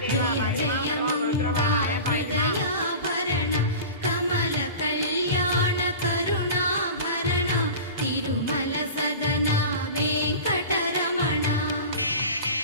జయ జయ మంగా హృదయాభరణ కమల కళ్యాణ కరుణాభరణ తిరుమల సదన వెంకటరమణ.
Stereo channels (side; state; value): both; inverted; correlation -0.34